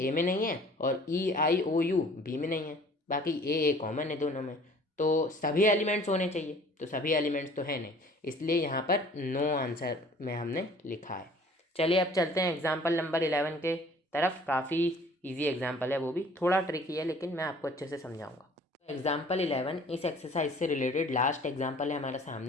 में नहीं है और ई आई ओ यू बी में नहीं है, बाकी ए कॉमन है दोनों में। तो सभी एलिमेंट्स होने चाहिए, तो सभी एलिमेंट्स तो है नहीं, इसलिए यहाँ पर नो आंसर में हमने लिखा है। चलिए अब चलते हैं एग्जाम्पल नंबर 11 के तरफ। काफ़ी इजी एग्जाम्पल है, वो भी थोड़ा ट्रिकी है, लेकिन मैं आपको अच्छे से समझाऊंगा। एग्जाम्पल 11 इस एक्सरसाइज से रिलेटेड लास्ट एग्जाम्पल है हमारे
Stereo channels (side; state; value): both; normal; correlation 0.51